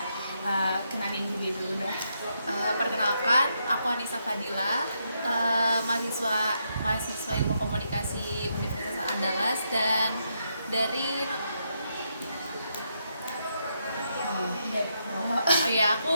Kenalin diri dulu dah. Perkenalkan, aku Anissa Fadila, mahasiswa Ilmu Komunikasi Universitas Andalas dan dari aku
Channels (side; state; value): both; inverted; correlation -0.79